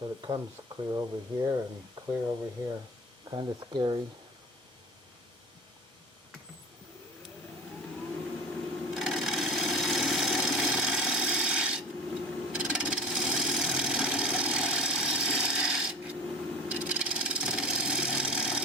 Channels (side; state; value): both; normal; correlation 0.34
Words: it comes clear over here and clear over here. Kind of scary.